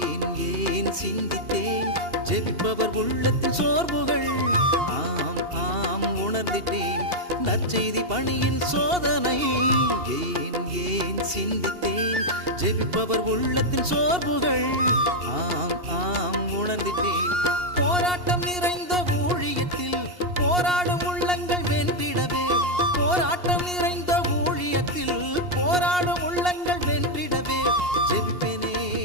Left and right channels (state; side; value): late; left; 2.8 ms